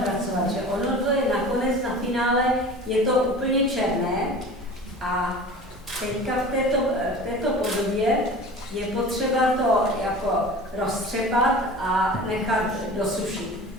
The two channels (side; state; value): both; normal; correlation 0.38